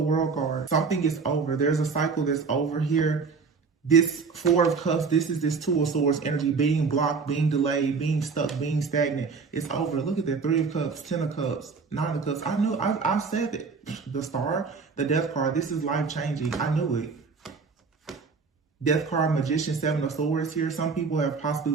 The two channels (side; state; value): left; quieter; 5.0 dB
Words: card. Something is over. There's a cycle that's over here. This Four of Cups, this is this Two of Swords energy, being blocked, being delayed, being stuck, being stagnant. It's over. Look at that. Three of Cups, Ten of Cups, Nine of Cups. I knew, I said it. The Star, the Death card, this is life-changing. I knew it. Death card, Magician, Seven of Swords here. Some people have possibly